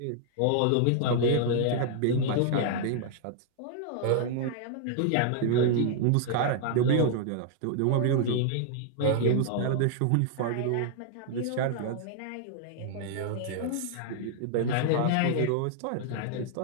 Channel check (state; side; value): different; both; correlation -0.01